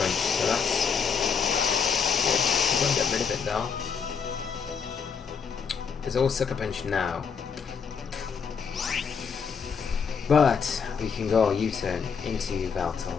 so that's good. We're going to get rid of it though. It's all Sucker Punch now. But we can go U-turn into Yveltal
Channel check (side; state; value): right; quieter; 6.3 dB